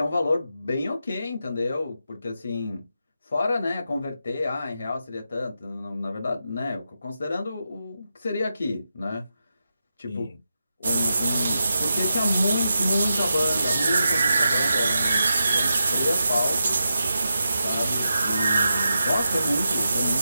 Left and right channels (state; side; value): inverted; both; correlation -0.87